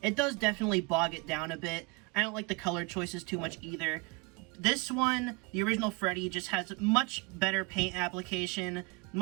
it does definitely bog it down a bit. I don't like the color choices too much either. This one, the original Freddy, just has much better paint application,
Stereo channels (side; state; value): left; quieter; 27.8 dB